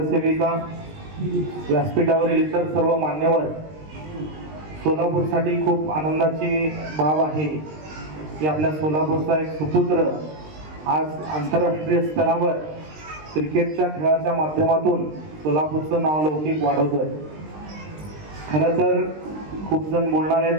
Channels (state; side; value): late; left; 20 ms